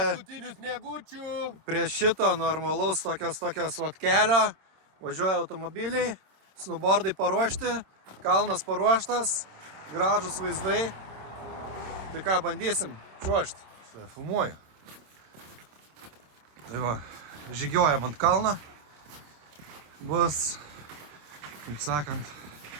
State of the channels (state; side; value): late; left; 26 ms